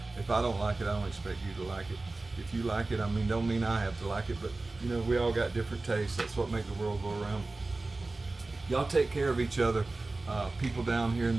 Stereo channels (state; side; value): quieter; left; 3.3 dB